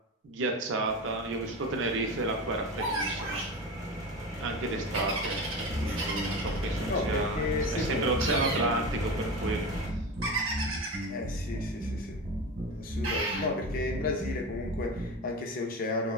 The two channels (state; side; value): normal; both; correlation 0.25